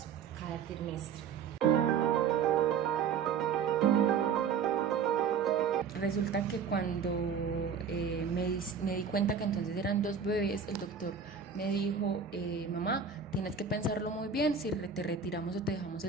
cada trimestre. Resulta que cuando me di cuenta que entonces eran dos bebés, el doctor me dijo, mamá, tienes que pensarlo muy bien, si te retiramos o te dejamos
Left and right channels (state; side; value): quieter; left; 6.4 dB